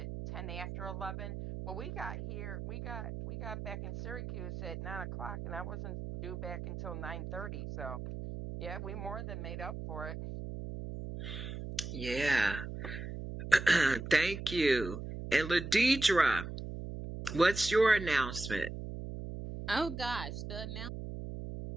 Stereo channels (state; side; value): noise; right; hum, 7 dB below the sound